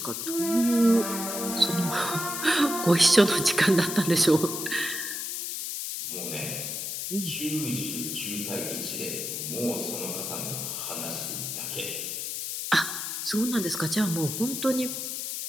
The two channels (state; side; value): noise; left; hiss, 4 dB below the sound